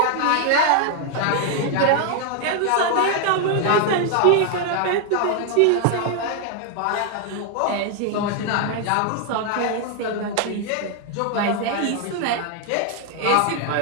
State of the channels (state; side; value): different; both; correlation 0.00